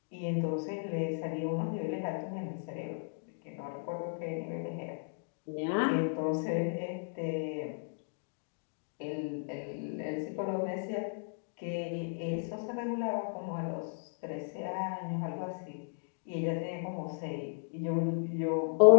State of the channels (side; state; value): right; silent; digital silence